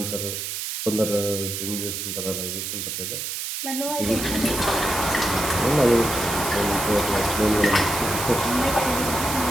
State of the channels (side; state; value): right; noise; hiss, 4 dB below the sound